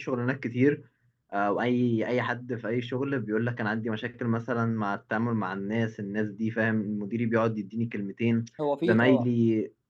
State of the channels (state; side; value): identical; both; correlation 1.00